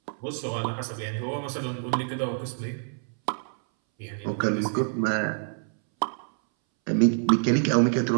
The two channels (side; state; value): left; silent; 60 dB below the other